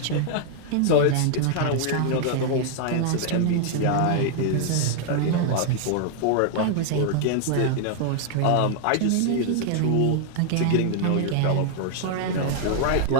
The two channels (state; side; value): different; both; correlation 0.00